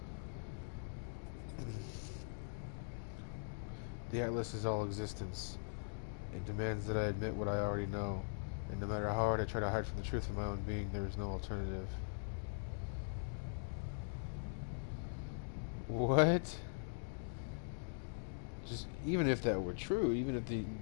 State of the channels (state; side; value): silent; right; digital silence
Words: The Atlas is all existence. It demands that I admit what I already know, and no matter how hard I try to hide from the truth of my own being, there is no alternative. What? Just even if that were true, even if the